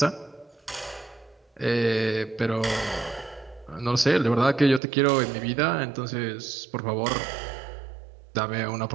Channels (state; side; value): drops out; left; at 4.8 s